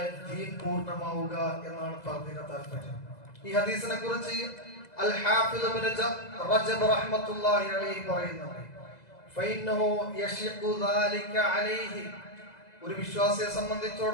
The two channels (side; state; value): right; late; 2.0 ms